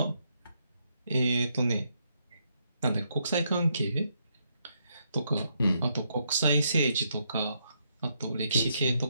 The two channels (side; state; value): both; inverted; correlation -0.77